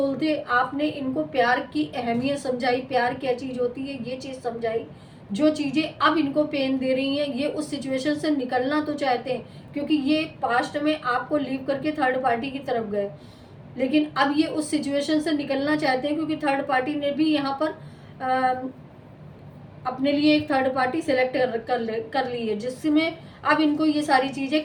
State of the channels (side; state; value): both; identical; correlation 1.00